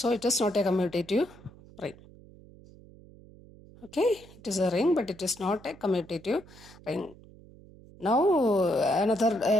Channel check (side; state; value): right; noise; hum, 22 dB below the sound